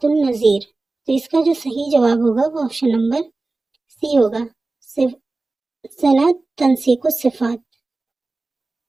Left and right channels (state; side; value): quieter; left; 3.3 dB